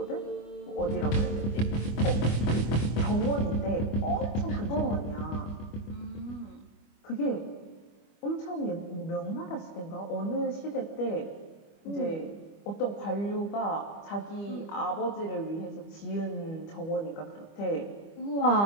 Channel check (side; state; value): right; late; 25 ms